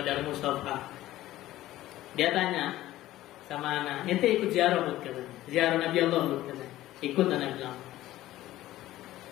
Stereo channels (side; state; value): right; quieter; 15.2 dB